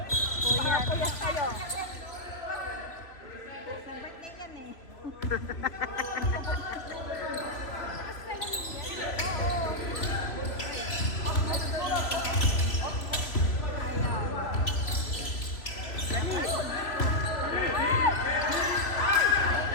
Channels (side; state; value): right; late; 3.1 ms